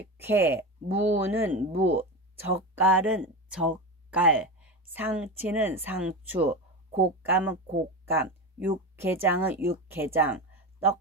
무는 무, 젓갈은 젓갈, 상치는 상추, 곶감은 곶감, 육개장은 육개장,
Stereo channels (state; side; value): normal; both; correlation 0.22